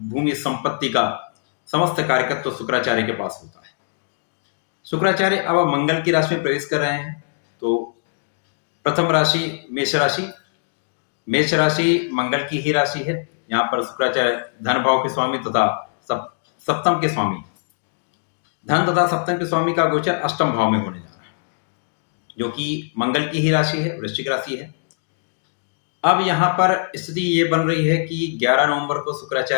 संपत्ति का समस्त कार्यकत्व शुक्राचार्य के पास होता है। शुक्राचार्य अब मंगल की राशि में प्रवेश कर रहे हैं। तो प्रथम राशि मेष राशि, मेष राशि मंगल की ही राशि है। यहाँ पर शुक्राचार्य धन भाव के स्वामी तथा सप्तम के स्वामी, धन तथा सप्तम के स्वामी का गोचर अष्टम भाव में होने जा रहा है, जो कि मंगल की ही राशि है, वृश्चिक राशि है। अब यहां पर स्थिति ये बन रही है कि 11 नवंबर को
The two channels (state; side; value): silent; right; digital silence